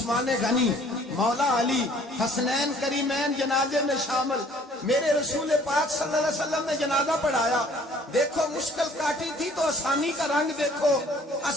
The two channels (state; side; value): normal; both; correlation 0.56